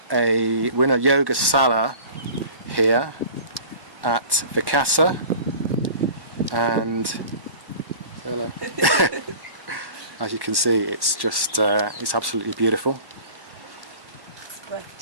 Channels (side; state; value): left; late; 1.1 ms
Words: we're in a yoga sala here at Vikasa, and hello. As you can see, it's just it's absolutely beautiful. It's